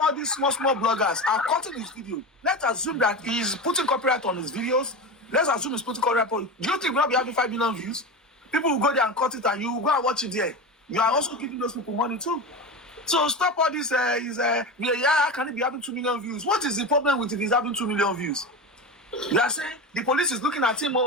all these small bloggers are cutting his video, let's assume that he's putting copyright on his videos. Let's assume he's putting copyright on. Do you think we'll not be having 5 million views? People will go there and cut it, and you will go and watch it there. you are also giving those people money too. So stop all this. Can it be having 2 million views? What is the problem with it is having 2 million views? You are saying the police is looking at him.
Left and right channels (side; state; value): both; normal; correlation 0.24